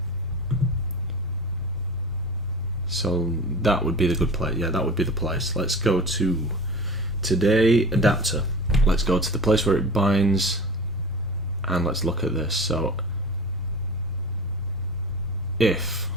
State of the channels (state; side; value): normal; both; correlation 0.35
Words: So that would be the good place. Yeah, that would be the place. Let's go to today adapter. Let's go to the place where it binds, and let's look at this. So if